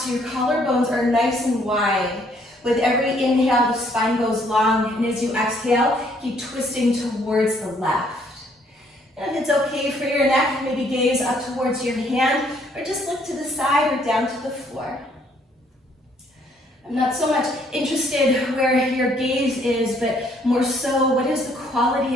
your collarbones are nice and wide. With every inhale, the spine goes long, and as you exhale, keep twisting towards the left. And if it's okay for your neck, maybe gaze up towards your hand, or just look to the side or down to the floor. I'm not so much interested where your gaze is, but more so, what is the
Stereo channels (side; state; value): both; normal; correlation 0.66